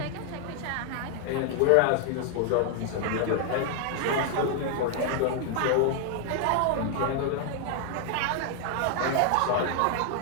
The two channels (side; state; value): both; different; correlation 0.00